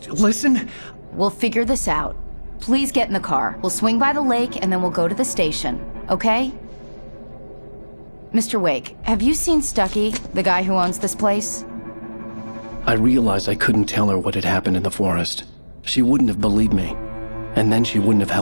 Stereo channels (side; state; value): both; inverted; correlation -1.00